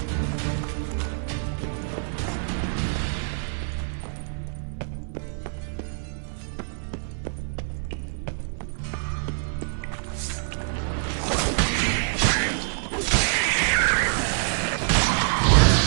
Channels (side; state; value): left; silent; 59 dB below the other